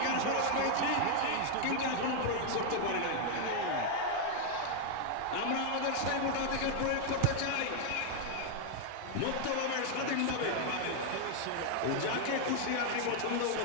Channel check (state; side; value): different; both; correlation 0.00